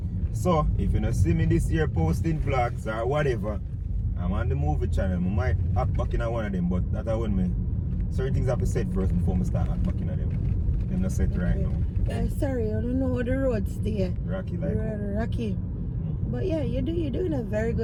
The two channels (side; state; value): both; identical; correlation 1.00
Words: So, if you don't see me this year posting vlogs or whatever, I'm on the movie channel. I might act back in one of them, but that I want me. Certain things have to set first before I start act back in them. Them not set right now. Sorry, I don't know how the road stay. Rocky like Rocky. But yeah, you're doing a very